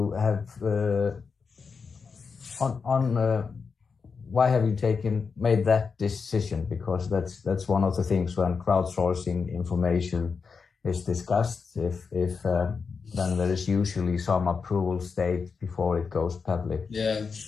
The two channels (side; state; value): right; quieter; 5.3 dB